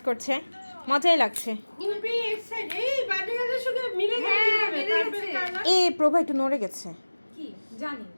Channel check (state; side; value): inverted; both; correlation -1.00